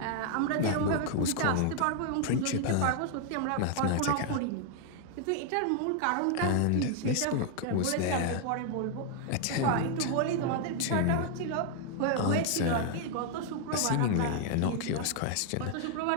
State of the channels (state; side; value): different; both; correlation 0.00